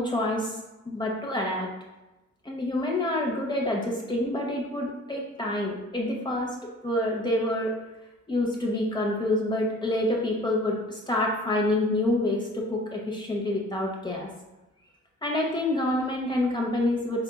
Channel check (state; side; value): normal; both; correlation 0.49